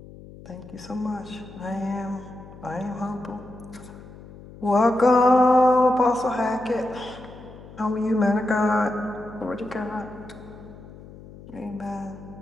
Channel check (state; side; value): noise; left; hum, 18 dB below the sound